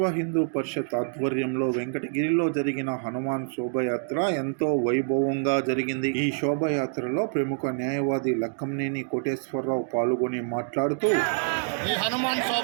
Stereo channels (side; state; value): left; silent; digital silence